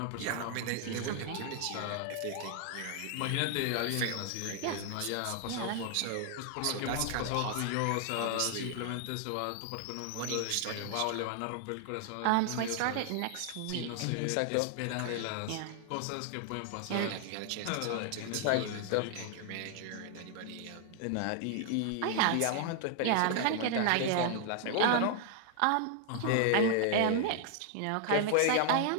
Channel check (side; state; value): both; different; correlation 0.00